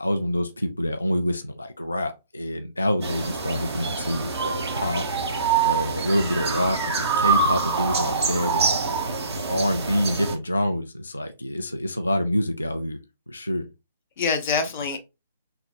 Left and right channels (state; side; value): inverted; both; correlation -0.59